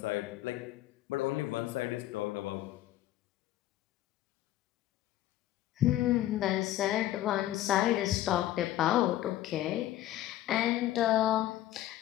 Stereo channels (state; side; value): quieter; right; 14.0 dB